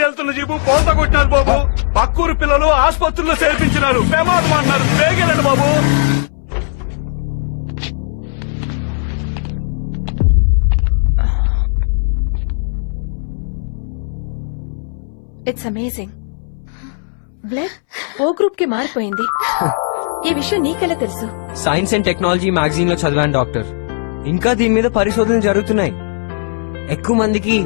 వెళ్తున్న జీపు పోత కొట్టారు బాబు. పక్కూరు పిల్లలు ఆసుపత్రుల్లో చేర్పించినారు. బాబు it's amazing. Blood O group కి మారిపోయింది. ఈ విషయం నీకెలా తెలుసు? సైన్స్ అండ్ టెక్నాలజీ మ్యాగజైన్ లో చదివాను డాక్టర్. ఇంకా దీని మీద పరిశోధనలు జరుగుతున్నాయి. ఎక్కువ మందికి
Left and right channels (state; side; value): silent; right; 64 dB below the other